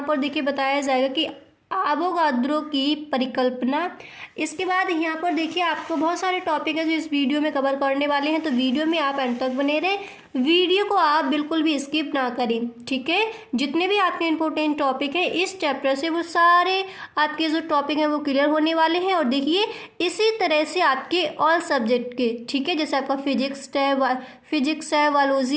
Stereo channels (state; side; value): identical; both; correlation 1.00